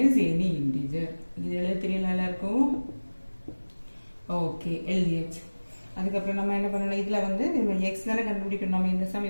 is any integer. இது எழுத தெரியல எல்லாருக்கும்? ஓகே, எழுதியாச்சு. அதுக்கப்புறம் நம்ம என்ன பண்ணணும், இதில் வந்து நம்ம எக்ஸ் தானே கண்டுபிடிக்கணும். நம்ம இந்த சம்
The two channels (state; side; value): inverted; both; correlation -1.00